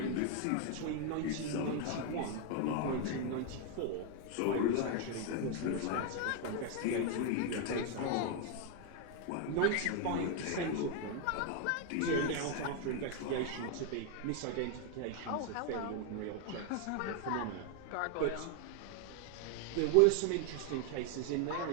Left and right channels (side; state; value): both; different; correlation 0.00